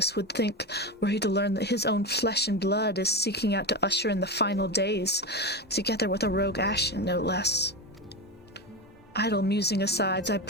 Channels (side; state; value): both; normal; correlation 0.19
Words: would think were he to learn that his own flesh and blood is seeking out to usher in the final days, together with a rogue Ashen, no less. Idle musing aside, I